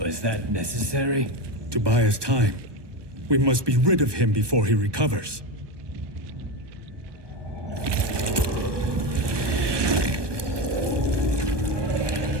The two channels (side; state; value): left; late; 1.2 ms